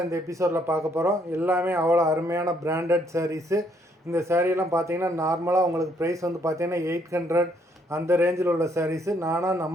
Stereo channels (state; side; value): normal; both; correlation 0.69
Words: இந்த எபிசோடில் பார்க்க போகிறோம். எல்லாமே அவ்வளோ அருமையான பிராண்டட் சாரீஸு. இந்த சாரீலாம் பார்த்தீங்கன்னா நார்மலாக உங்களுக்கு ப்ரைஸ் வந்து பார்த்தீங்கன்னா 800 அந்த ரேஞ்சில் உள்ள சாரீஸு.